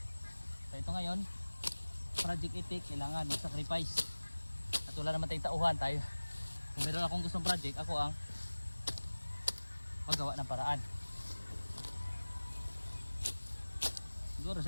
So ito ngayon, project itik, kailangan mag-sacrifice. At wala naman tayong tauhan tayo. Kung meron akong gustong project, ako ang magawa ng paraan. Siguro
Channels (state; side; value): inverted; both; correlation -1.00